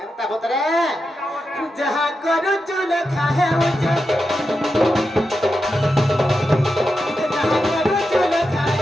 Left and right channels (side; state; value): both; normal; correlation 0.88